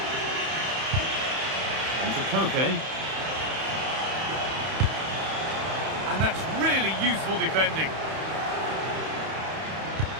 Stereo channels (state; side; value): late; left; 31 ms